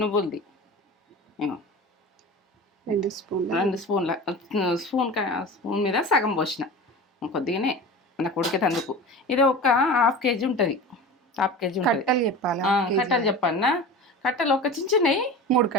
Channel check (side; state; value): both; normal; correlation 0.33